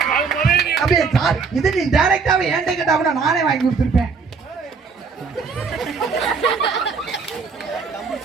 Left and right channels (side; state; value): left; quieter; 5.1 dB